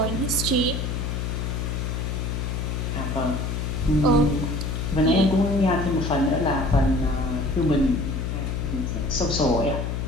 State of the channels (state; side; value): noise; left; hum, 2 dB below the sound